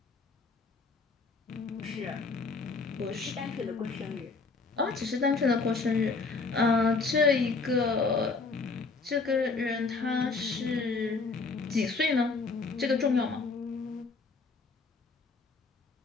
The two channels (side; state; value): right; quieter; 4.2 dB